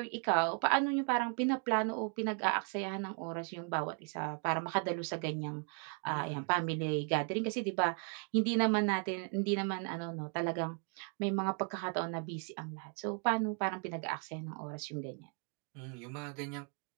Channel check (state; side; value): quieter; left; 38.6 dB